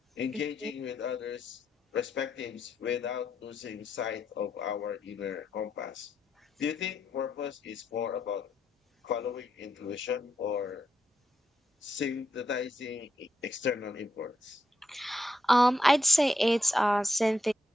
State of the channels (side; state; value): both; normal; correlation 0.82